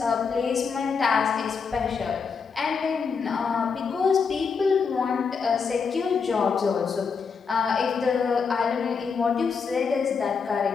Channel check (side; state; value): right; quieter; 5.6 dB